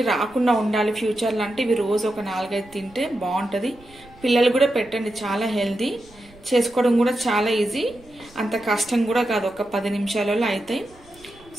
రాకుండా ఉండాలి ఫ్యూచర్లో అంటే ఇవి రోజు ఒక 4-5 తింటే బాగుంటుంది. పిల్లలు కూడా పెట్టండి, చాలా హెల్దీ, చేసుకోవడం కూడా చాలా ఈజీ, అంత కష్టం కూడా కాదు, ఒక 10 నిమిషాలలో అవుతాయి.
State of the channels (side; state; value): right; noise; rumble, 25 dB below the sound